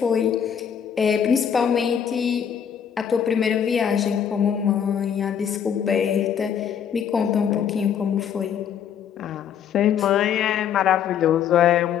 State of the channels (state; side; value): quieter; right; 8.3 dB